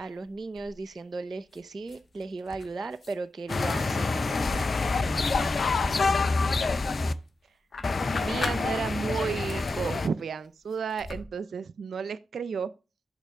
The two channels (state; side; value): normal; both; correlation 0.88